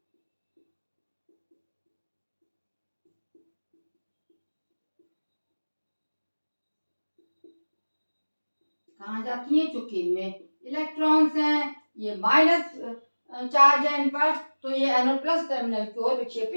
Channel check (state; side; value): inverted; both; correlation -1.00